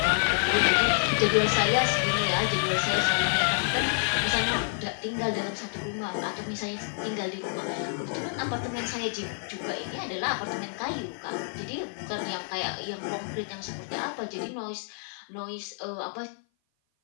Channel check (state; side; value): silent; right; 56 dB below the other